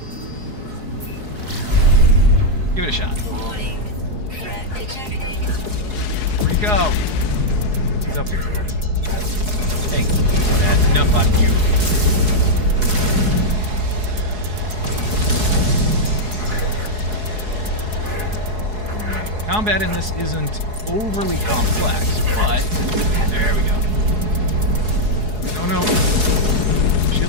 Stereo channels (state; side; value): late; left; 4.7 ms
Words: Give it a shot. Warning. Threat detected. Where'd he go? He's up here. Hey, that's enough on you. Combat in this isn't overly complex, but there we go. Oh no.